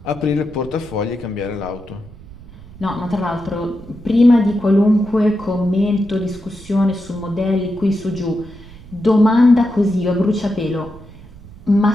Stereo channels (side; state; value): right; noise; rumble, 19 dB below the sound